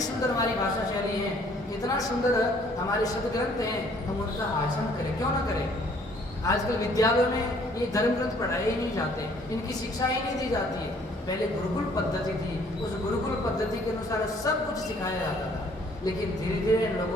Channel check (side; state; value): both; normal; correlation 0.60